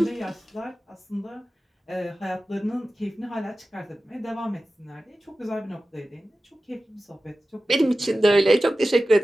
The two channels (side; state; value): both; normal; correlation 0.95